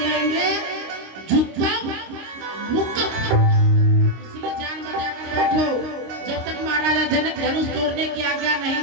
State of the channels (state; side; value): late; left; 25 ms